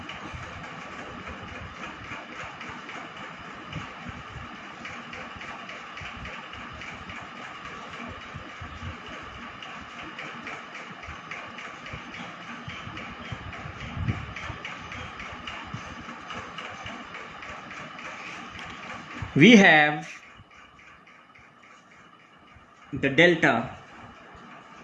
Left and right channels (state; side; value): identical; both; correlation 1.00